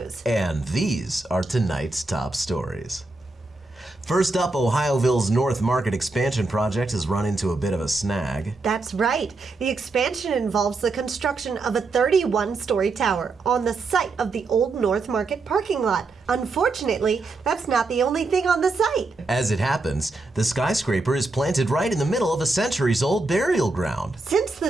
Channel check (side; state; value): left; quieter; 3.4 dB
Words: And these are tonight's top stories. First up, Ohioville's North Market expansion project has run into a bit of a snag. That's right. The expansion involves the construction of a 31-story tower on the site of the old North Market parking lot. Unfortunately, that's not the only thing on the site. As it happens, the skyscraper is planted right in the middle of a centuries-old burial ground. Since the